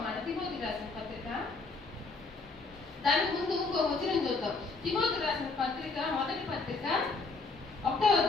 తిమోతి రాసిన పత్రిక, దానికి ముందు ఇంకో వచనం చూద్దాం. తిమోతి రాసిన పత్రిక, మొదటి పత్రిక 1వ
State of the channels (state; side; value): quieter; right; 3.8 dB